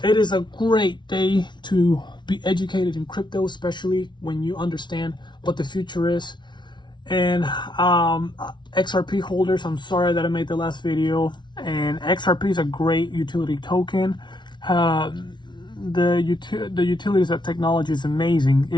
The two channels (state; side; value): late; right; 0.22 ms